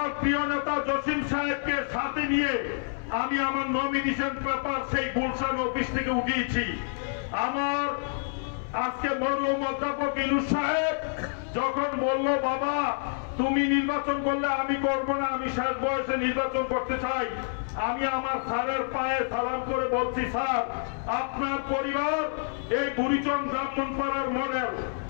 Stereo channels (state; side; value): silent; right; 59 dB below the other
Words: প্রিয় নেতা জসিম সাহেবকে সাথে নিয়ে আমি আমার নমিনেশন পেপার সেই গুলশান অফিস থেকে উঠিয়েছি। আমার আজকে মরহুম অধ্যাপক ইউনূস সাহেব যখন বলল, বাবা তুমি নির্বাচন করলে আমি করব না, আমি শেষ বয়সে নির্বাচন করতে চাই, আমি আমার স্যারের পায়ে সালাম করে বলছি, স্যার আপনার পরিবার এই বুড়িচং ব্রাহ্মণপাড়ার মডেল,